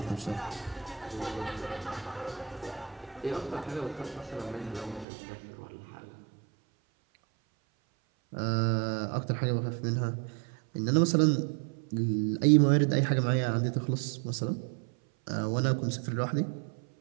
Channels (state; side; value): drops out; left; at 5.1 s